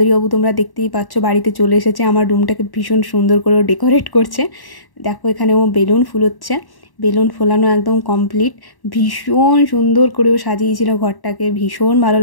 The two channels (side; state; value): right; late; 1.1 ms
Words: তোমরা দেখতেই পাচ্ছ বাড়িতে চলে এসেছে। আমার রুমটাকে ভীষণ সুন্দর করে ডেকোরেট করছে। দেখো এখানে ও বেলুন ফুলোচ্ছে। বেলুন ফোলানো একদম কমপ্লিট। ভীষণ সুন্দর করেও সাজিয়েছিল ঘরটাকে। ভীষণ ভালো